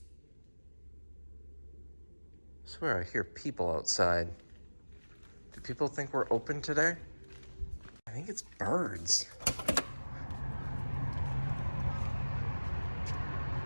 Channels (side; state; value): both; inverted; correlation -1.00